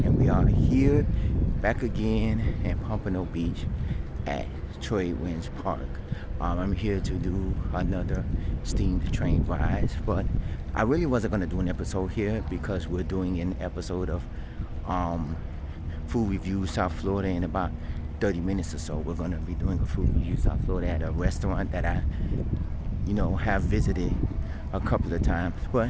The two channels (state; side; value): identical; both; correlation 1.00